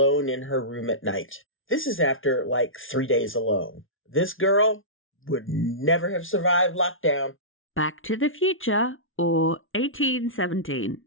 in her room at night. This is after 3 days alone. This girl would never have survived lockdown. Back to the Future or 1817,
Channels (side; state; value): right; late; 0.58 ms